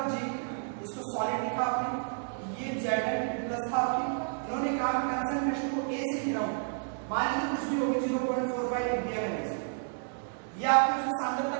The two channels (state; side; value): silent; left; digital silence